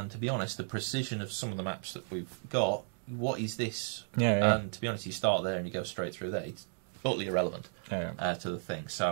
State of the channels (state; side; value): silent; left; 55 dB below the other